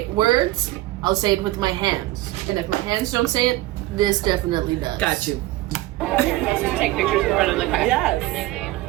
words, I'll say it with my hands. And if my hands don't say it, this definitely does. Got you. Take pictures in front of the car. Yes.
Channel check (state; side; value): quieter; left; 17.4 dB